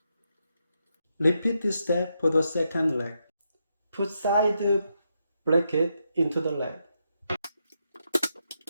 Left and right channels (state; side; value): inverted; both; correlation -0.82